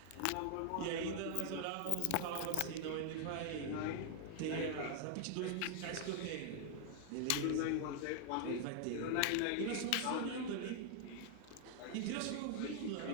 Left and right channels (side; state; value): both; different; correlation 0.00